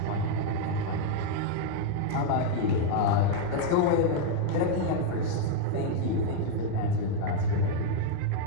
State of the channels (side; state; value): both; different; correlation 0.00